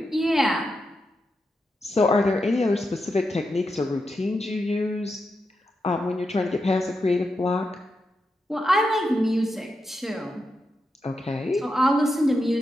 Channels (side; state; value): both; normal; correlation 0.86